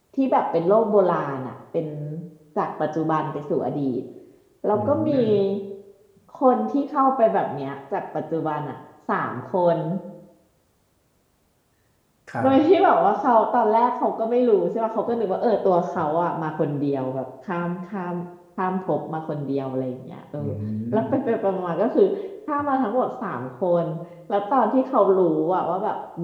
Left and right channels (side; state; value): both; identical; correlation 1.00